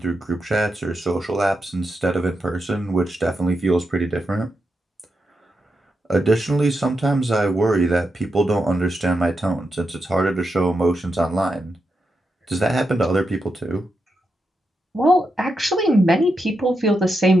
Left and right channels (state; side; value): normal; both; correlation 0.86